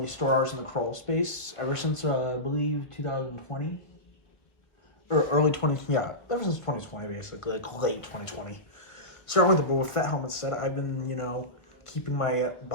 store ours in the crawl space ever since, I believe, 2020. Or early 20, yeah, ever since 2020, basically, like late 2020. Starting with the Boba Fett helmet set, I've been, keeping my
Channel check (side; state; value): right; late; 1.6 ms